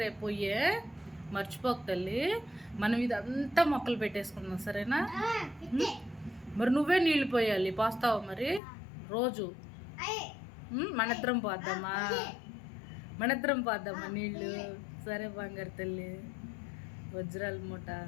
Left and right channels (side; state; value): right; drops out; at 8.6 s